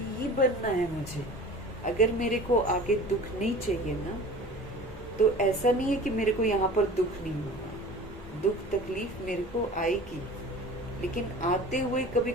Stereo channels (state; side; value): normal; both; correlation 0.40